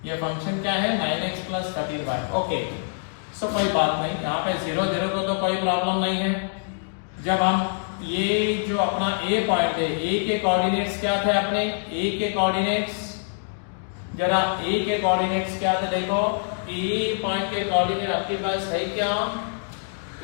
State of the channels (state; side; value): silent; right; digital silence